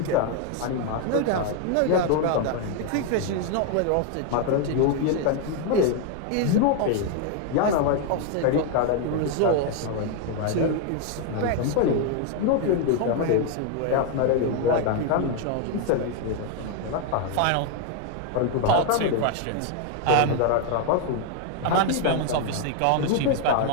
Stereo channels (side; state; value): both; different; correlation 0.01